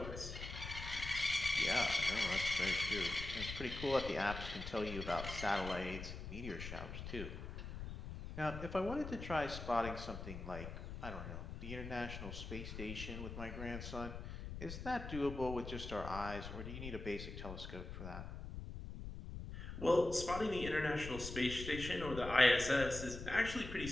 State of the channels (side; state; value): left; noise; rumble, 8 dB below the sound